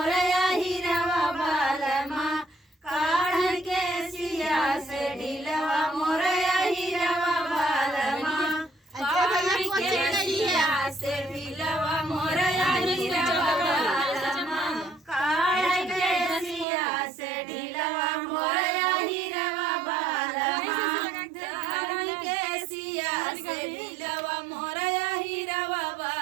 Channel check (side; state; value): left; drops out; at 16.7 s